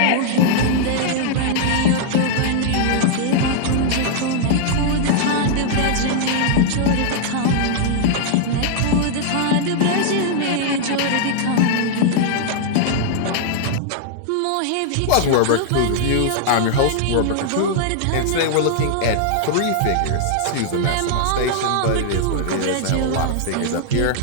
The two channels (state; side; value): different; both; correlation -0.01